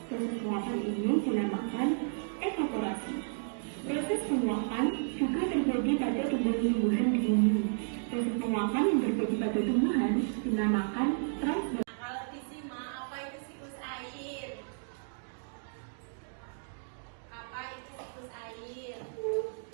Proses penguapan ini dinamakan evaporasi. Proses penguapan juga terjadi pada tumbuhan-tumbuhan di bumi. Proses penguapan yang terjadi pada tumbuhan dinamakan transpirasi. Kalau Bisma, apa itu siklus air? Apa itu siklus air?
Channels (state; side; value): silent; left; digital silence